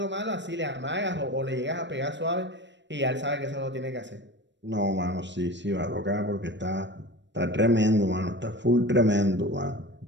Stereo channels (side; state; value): left; late; 0.53 ms